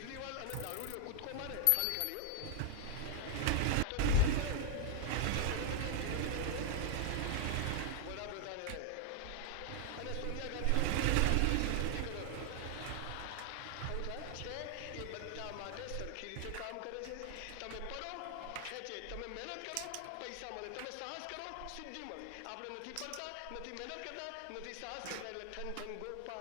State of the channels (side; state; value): both; different; correlation 0.00